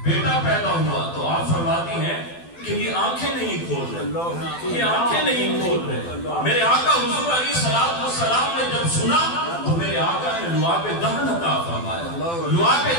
بیٹا پیدا ہوا۔ تو آپ فرماتی ہیں کہ یہ آنکھیں نہیں کھول رہے، یہ آنکھیں نہیں کھول رہے۔ میرے آقا حضور علیہ السلام نے جب سنا تو میرے آقا نے لعاب دہن عطا فرمایا۔ لعاب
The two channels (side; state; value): right; late; 12 ms